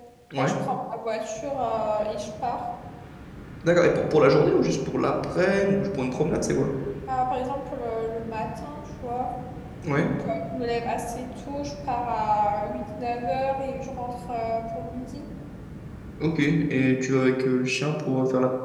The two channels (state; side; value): identical; both; correlation 1.00